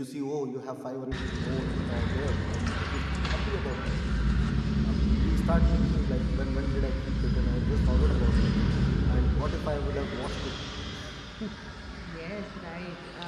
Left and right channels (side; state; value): both; identical; correlation 1.00